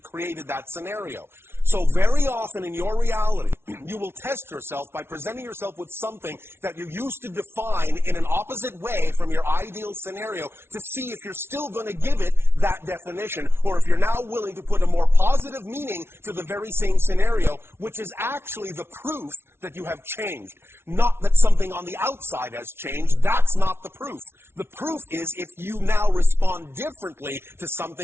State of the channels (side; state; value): left; late; 0.12 ms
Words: created that scenario. So very often in your reality, you will test yourself by presenting yourself with something that you used to define in an opposite way from your ideal scenario to see if you're still going to give it that definition or if you're now willing to put a more positive meaning to the very same scenario, which is actually the proof that you have changed. Not that something on the outside has changed. That's not the proof. The proof is if you now respond differently to